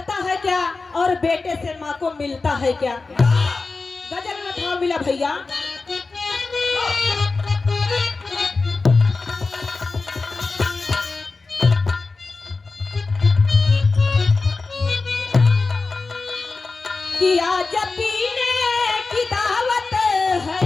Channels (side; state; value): right; quieter; 3.9 dB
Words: है क्या और बेटे से माँ को मिलता है क्या। गजल में भाव मिला भैया, कि आज पीने की दावत है